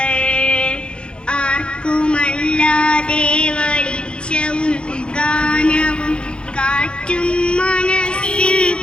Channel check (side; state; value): right; late; 0.055 ms